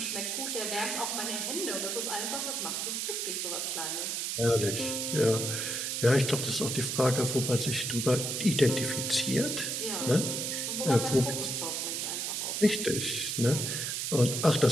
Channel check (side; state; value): right; noise; hiss, 1 dB below the sound